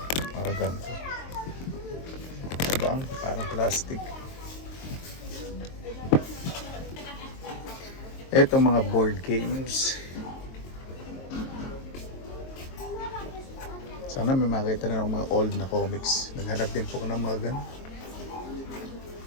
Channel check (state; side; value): late; right; 23 ms